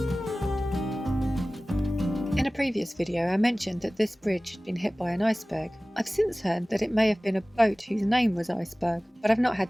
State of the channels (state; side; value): normal; both; correlation 0.98